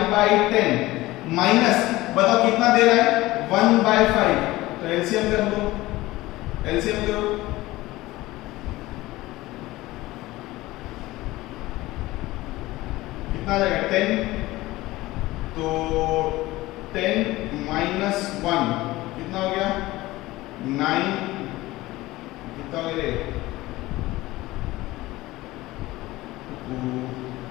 माइनस बताओ कितना दे रहा है 1/5। तो एलसीएम कर लो, एलसीएम करो, कितना आ जाएगा 10। तो 10 माइनस 1 कितना हो गया 9, कितना हो गया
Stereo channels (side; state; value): right; quieter; 18.4 dB